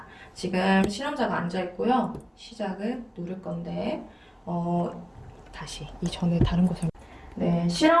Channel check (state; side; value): identical; both; correlation 1.00